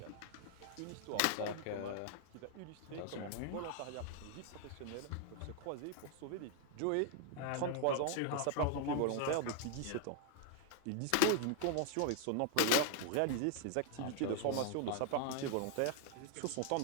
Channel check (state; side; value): different; both; correlation 0.00